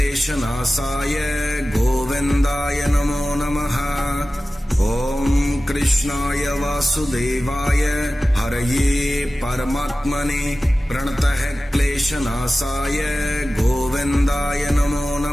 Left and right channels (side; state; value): both; normal; correlation 0.95